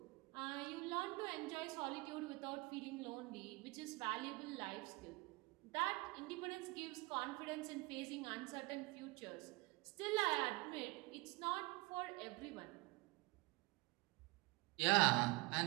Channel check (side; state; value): left; quieter; 25.1 dB